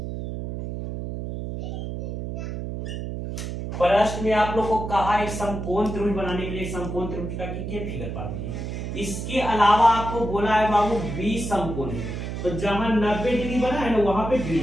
प्रश्न में आप लोग को कहा एक समकोण त्रिभुज बनाने के लिए समकोण त्रिभुज का फिगर पा दीजिए। इसके अलावा आपको बोला है बाबू 20 समकोण है, तो जहां 90 डिग्री बना है ना वहां पे डी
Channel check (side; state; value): right; noise; hum, 6 dB below the sound